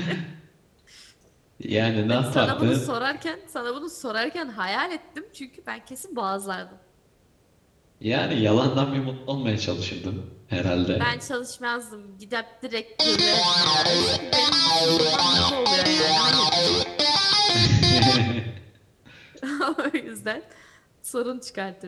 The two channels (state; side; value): identical; both; correlation 1.00